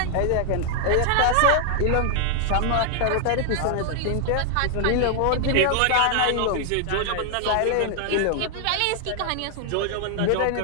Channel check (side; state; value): both; different; correlation 0.00